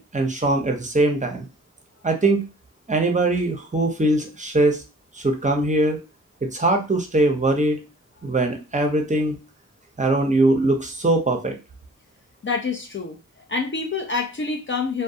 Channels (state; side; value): normal; both; correlation 0.49